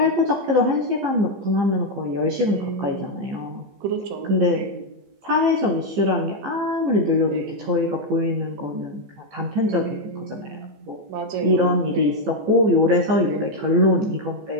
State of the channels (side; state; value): left; late; 15 ms